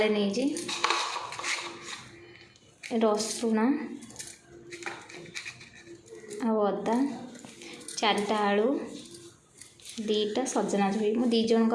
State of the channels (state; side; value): identical; both; correlation 1.00